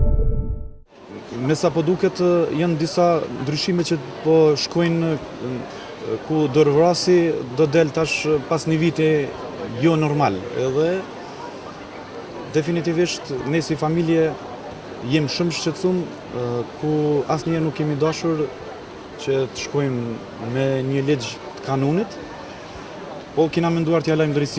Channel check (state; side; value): identical; both; correlation 1.00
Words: sa po duket, janë disa ndryshime që po shkojnë ku dorëvrasi do del tash pas një viti jo normal. Edhe definitivisht ne si familje jem shumë shqetësum ku asnjëherë nuk kemi dashur që të shkojmë me një ligj të kanunit, po kena menduar t'ja lajmë